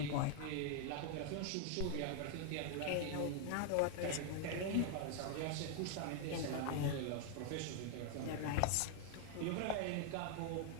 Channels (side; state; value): both; different; correlation 0.00